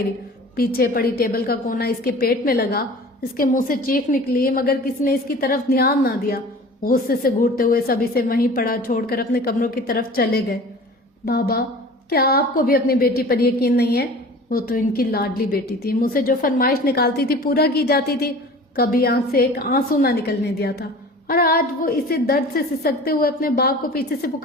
پیچھے پڑی ٹیبل کا کونا اس کے پیٹ میں لگا، اس کے منہ سے چیخ نکلی، مگر کسی نے اس کی طرف دھیان نہ دیا۔ غصے سے گھورتے ہوئے سب اسے وہیں پڑا چھوڑ کر اپنے کمروں کی طرف چلے گئے۔ بابا، کیا آپ کو بھی اپنی بیٹی پر یقین نہیں ہے؟ وہ تو ان کی لاڈلی بیٹی تھی، منہ سے جو فرمائش نکالتی تھی پورا کی جاتی تھی، کبھی آنکھ سے ایک آنسو نہ نکلنے دیا تھا۔ اور آج وہ اسے درد سے سسکتے ہوئے اپنے باپ کو پیچھے سے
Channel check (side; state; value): both; normal; correlation 0.42